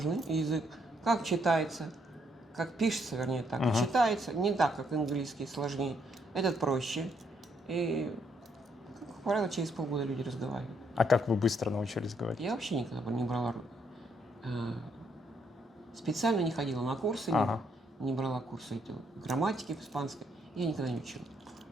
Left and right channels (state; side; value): normal; both; correlation 0.73